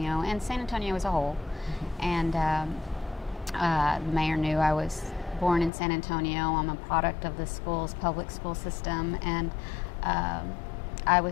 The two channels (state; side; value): drops out; right; at 5.7 s